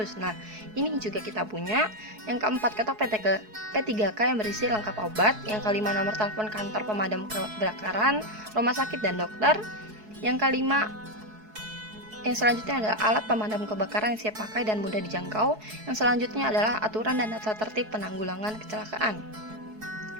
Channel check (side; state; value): left; late; 4.7 ms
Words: Nah, ini juga kita punya. Yang keempat, ketok P3K yang berisi lengkap obat. Yang kelima, nomor telepon kantor pemadam kebakaran, rumah sakit, dan dokter. Yang selanjutnya adalah alat pemadam kebakaran yang siap pakai dan mudah dijangkau. Yang selanjutnya adalah aturan dan tata tertib penanggulangan kecelakaan.